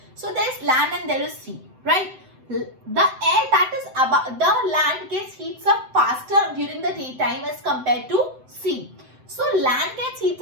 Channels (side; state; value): left; late; 7.8 ms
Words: So there is land and there is sea, right? The air that is above the land gets heats up faster during the daytime as compared to sea. So land gets